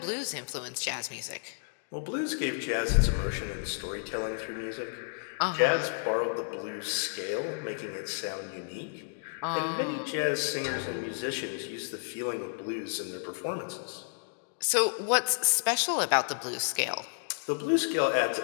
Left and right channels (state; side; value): silent; right; digital silence